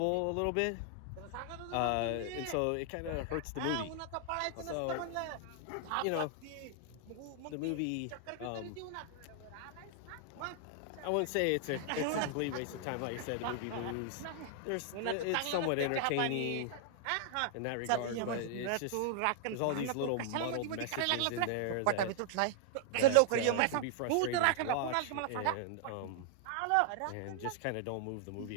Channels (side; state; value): both; different; correlation -0.01